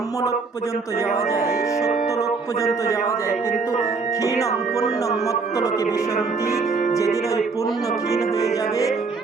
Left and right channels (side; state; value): left; quieter; 4.4 dB